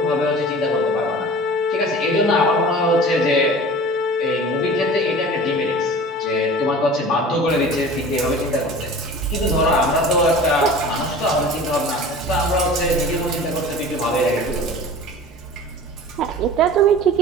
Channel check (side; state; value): both; normal; correlation 0.39